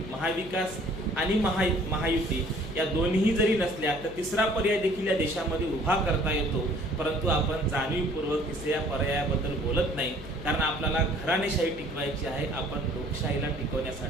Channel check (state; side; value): noise; left; hum, 15 dB below the sound